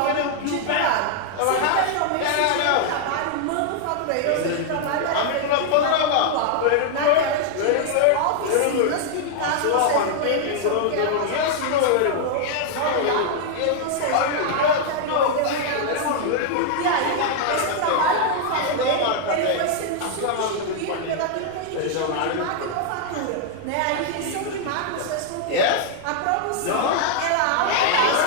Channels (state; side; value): different; both; correlation 0.00